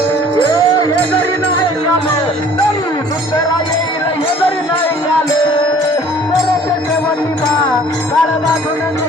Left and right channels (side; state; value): both; normal; correlation 0.52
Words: हे जरी नाही झालं, तरी दुसरा येईल हे जरी नाही झालं. सरते शेवटी बा काळ बांधून